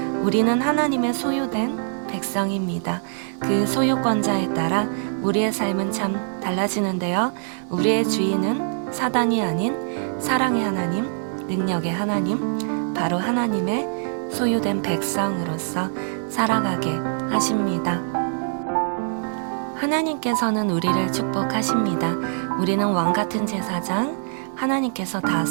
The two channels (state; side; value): silent; left; digital silence